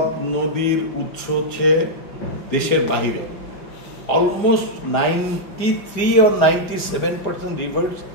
নদীর উৎস হচ্ছে দেশের বাহিরে। Almost 93 or 97% rivers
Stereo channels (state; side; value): late; right; 4.9 ms